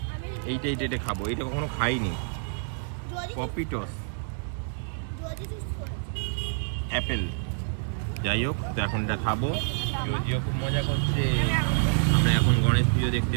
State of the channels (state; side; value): silent; left; digital silence